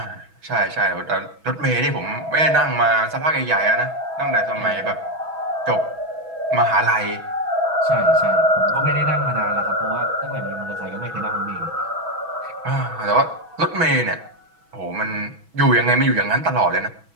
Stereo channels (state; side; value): late; left; 6.1 ms